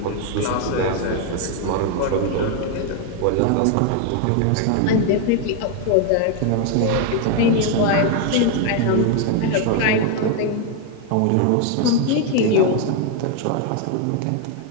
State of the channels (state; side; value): different; both; correlation 0.01